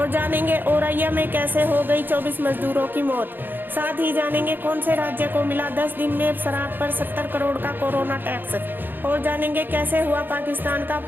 जानेंगे औरैया में कैसे हो गई 24 मजदूरों की मौत। साथ ही जानेंगे कौन से राज्य को मिला 10 दिन में शराब पर 70 करोड़ का कोरोना टैक्स। और जानेंगे कैसे हुआ पाकिस्तान का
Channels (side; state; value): left; late; 0.094 ms